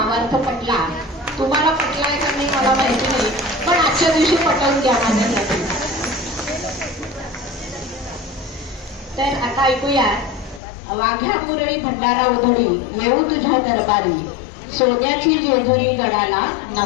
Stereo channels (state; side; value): drops out; right; at 10.6 s